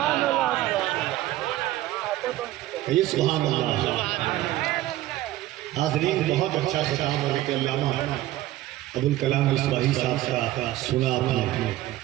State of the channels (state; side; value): quieter; left; 15.4 dB